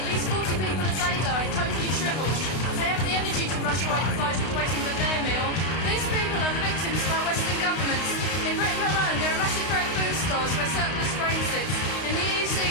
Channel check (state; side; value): late; right; 32 ms